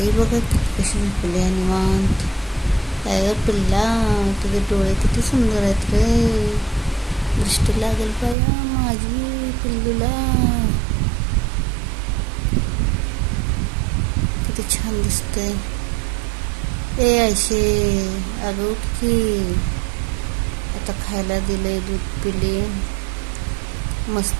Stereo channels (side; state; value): left; drops out; at 8.3 s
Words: बघा कशी झोपली आहे निवांत. काय ग पिल्ला, तुझे डोळे किती सुंदर आहेत रे. दृष्टी लागेल पाया माझी पिल्लूला. किती छान दिसतंय. ए आयशे, अगं उठ की. आता खायला दिलंय, दूध पिली,